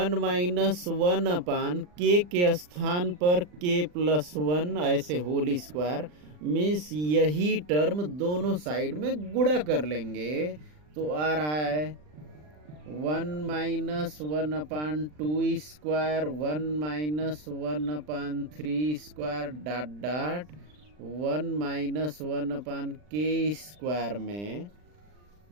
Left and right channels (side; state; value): left; late; 40 ms